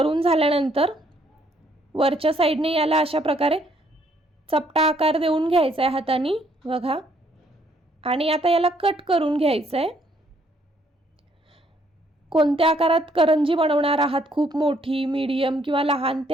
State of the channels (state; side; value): normal; both; correlation 0.68